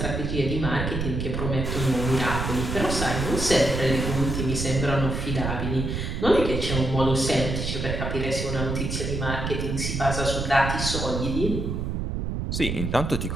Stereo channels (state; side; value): noise; right; rumble, 2 dB below the sound